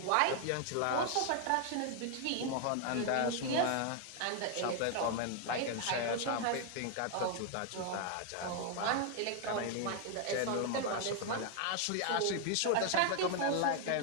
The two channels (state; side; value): different; both; correlation 0.00